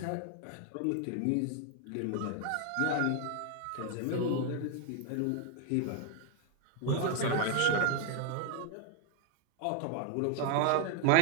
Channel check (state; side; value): different; both; correlation 0.01